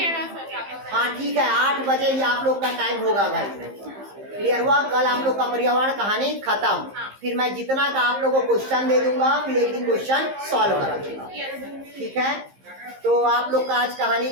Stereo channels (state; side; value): late; left; 15 ms